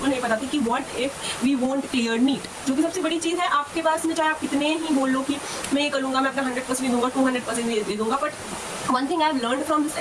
नहीं पता थी कि what if we won't clear NEET, जो कि सबसे बड़ी चीज़ है. आपके पास में चाहे आप कितने ही बोल लो कि मैं ये कर लूँगा, मैं अपना 100% दूंगा, 200% दे दूंगा, but one thing I've learned from this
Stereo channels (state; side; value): identical; both; correlation 1.00